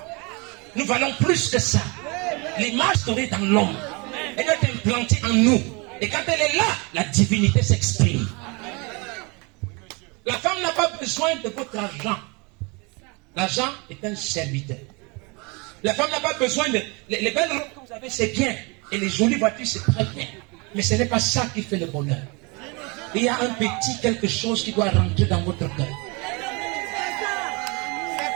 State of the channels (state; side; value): quieter; left; 29.4 dB